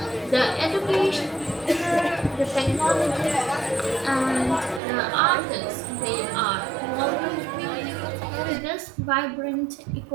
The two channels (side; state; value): left; drops out; at 4.8 s